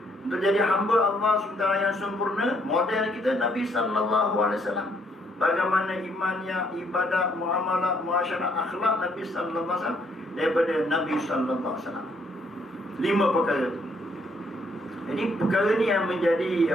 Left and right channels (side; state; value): both; normal; correlation 0.69